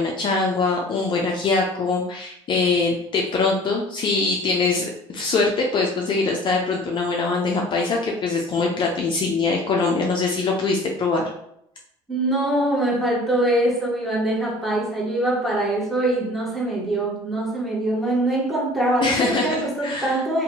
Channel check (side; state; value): both; normal; correlation 0.47